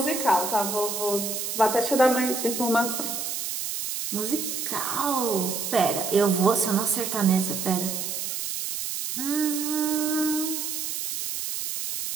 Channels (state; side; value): noise; right; hiss, 4 dB below the sound